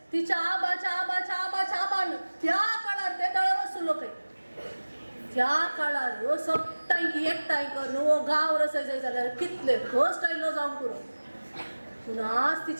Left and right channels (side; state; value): both; inverted; correlation -1.00